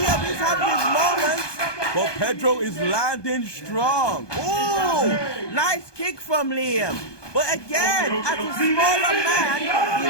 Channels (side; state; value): right; late; 1.2 ms